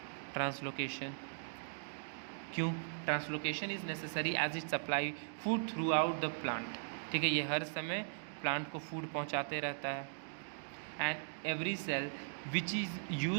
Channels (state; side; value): silent; left; digital silence